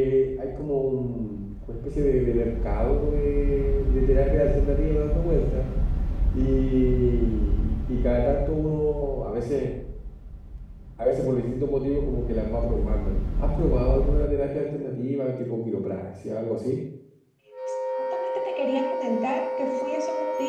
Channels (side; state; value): both; identical; correlation 1.00